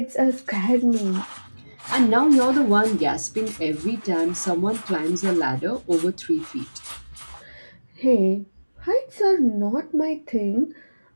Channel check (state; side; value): inverted; both; correlation -1.00